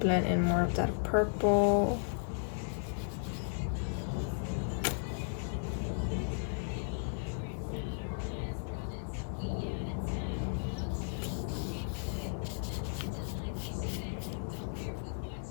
in more of that purple.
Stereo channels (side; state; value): right; silent; digital silence